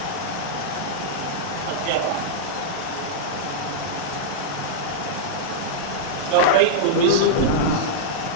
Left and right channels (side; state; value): both; different; correlation -0.03